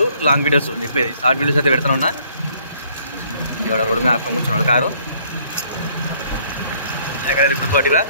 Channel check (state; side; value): inverted; both; correlation -0.63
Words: లాంగ్ వీడియోస్ ఉంది, షార్ట్ వీడియోస్ అయితే పెడుతున్నా. ఎవడ రోడ్డు మీద ఆపుకొని కూర్చున్నాడు కారు. ఎక్కడైనా గుర్తుపట్టిరా